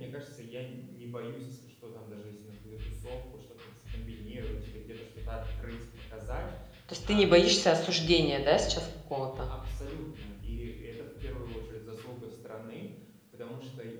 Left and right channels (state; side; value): identical; both; correlation 1.00